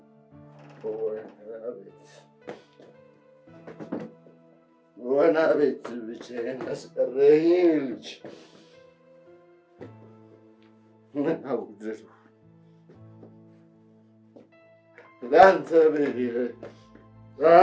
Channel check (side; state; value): both; identical; correlation 1.00